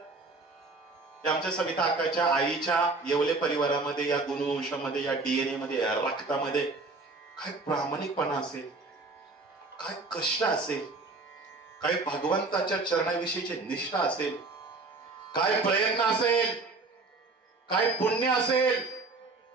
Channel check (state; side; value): quieter; left; 3.5 dB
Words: आमच्या सविता अक्काच्या आईच्या येवले परिवारामध्ये या गुणवंशामध्ये या डीएनए मध्ये या रक्तामध्ये काय प्रामाणिकपणा असेल, काय कष्ट असेल, काय भगवंताच्या चरणाविषयीची निष्ठा असेल, काय प्रयत्न असेल, काय पुण्य असेल,